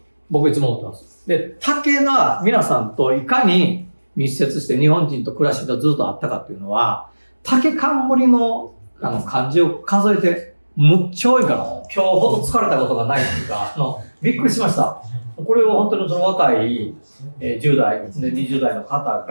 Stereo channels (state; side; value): inverted; both; correlation -1.00